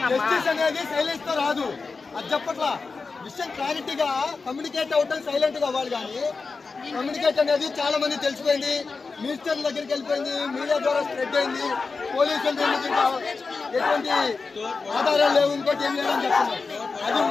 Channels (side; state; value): right; quieter; 4.3 dB